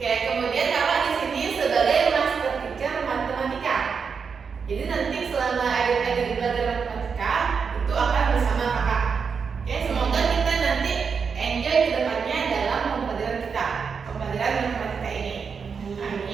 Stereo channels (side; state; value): left; quieter; 5.9 dB